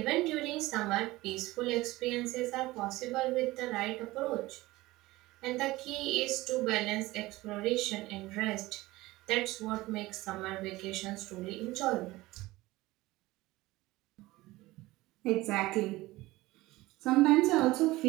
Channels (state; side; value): quieter; left; 19.1 dB